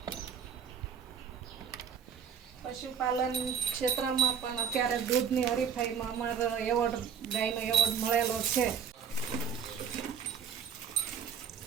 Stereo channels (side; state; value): left; quieter; 7.3 dB